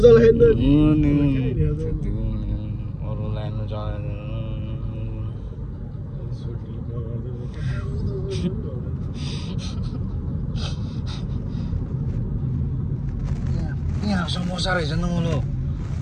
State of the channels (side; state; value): both; identical; correlation 1.00